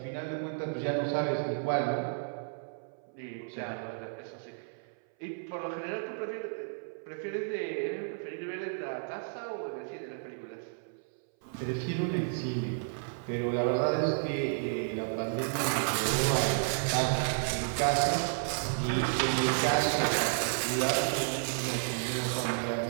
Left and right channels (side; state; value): left; silent; 56 dB below the other